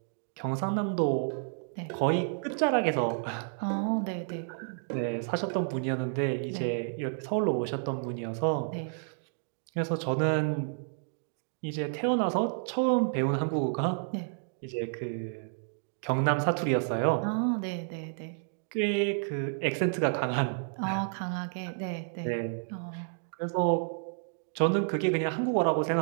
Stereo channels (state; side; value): silent; left; digital silence